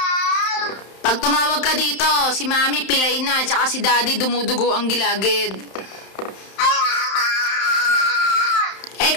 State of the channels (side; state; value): right; late; 31 ms